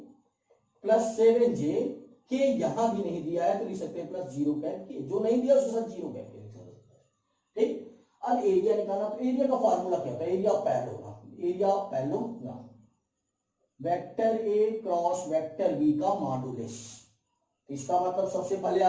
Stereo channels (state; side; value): identical; both; correlation 1.00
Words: प्लस 7j, के यहां भी नहीं दिया है तो लिख सकते हैं +0 कैप के, जो नहीं दिया उसके साथ 0 कैप के लिख सकते हैं। ठीक, अब एरिया निकालना, तो एरिया का फॉर्मूला क्या होता है, area of parallelogram, area of parallelogram vector A cross vector B का मॉडुलस। इसका मतलब सबसे पहले